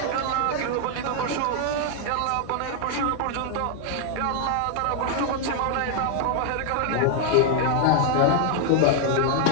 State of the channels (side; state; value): both; different; correlation 0.00